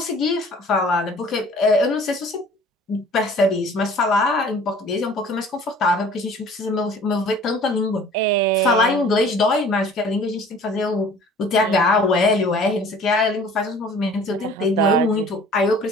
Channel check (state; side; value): normal; both; correlation 0.49